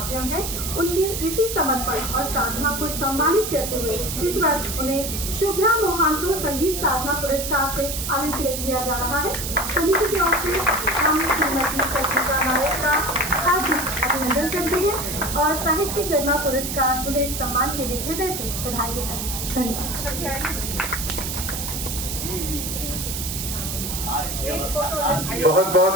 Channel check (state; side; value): noise; right; hiss, 4 dB below the sound